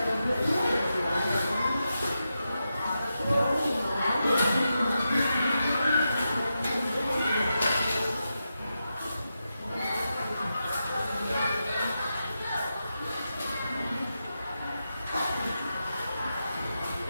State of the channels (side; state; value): both; inverted; correlation -0.88